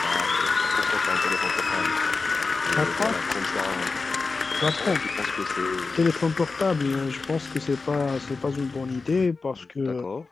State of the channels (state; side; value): quieter; right; 4.1 dB